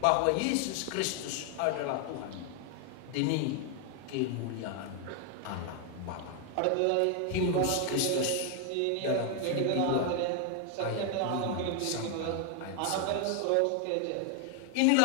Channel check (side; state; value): both; different; correlation 0.00